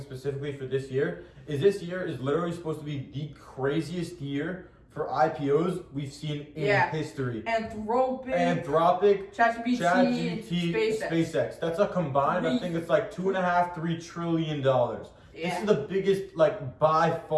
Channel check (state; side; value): identical; both; correlation 1.00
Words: specifically for this year is literally supposed to be the craziest year for IPOs we've seen in history. Anthropic, ChatGPT, SpaceX. That's a combined, I think it's $2.5-3 trillion. Yeah. This is the biggest, by